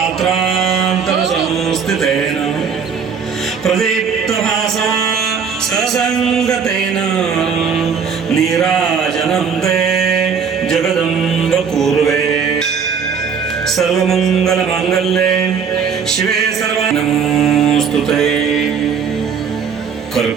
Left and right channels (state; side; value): quieter; left; 6.4 dB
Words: प्रदीप्तभासा ससङ्गतेन नीराजनं ते जगदम्ब कुर्वे सर्वमङ्गलमाङ्गल्ये शिवे सर्वानमोऽस्तुते।